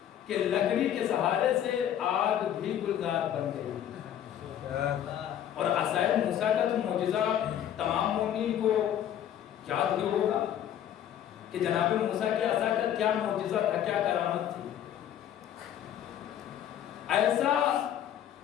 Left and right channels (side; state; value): right; quieter; 10.5 dB